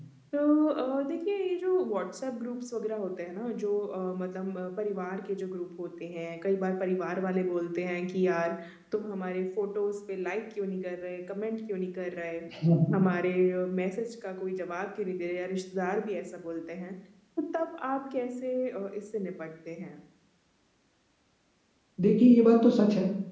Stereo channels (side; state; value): both; identical; correlation 1.00